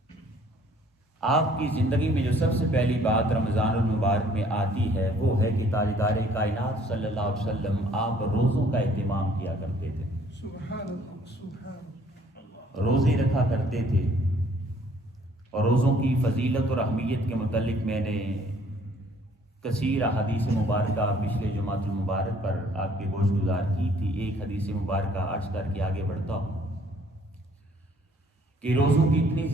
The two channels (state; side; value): normal; both; correlation 0.60